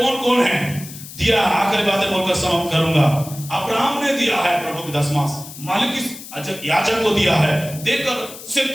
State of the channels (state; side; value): noise; left; hiss, 14 dB below the sound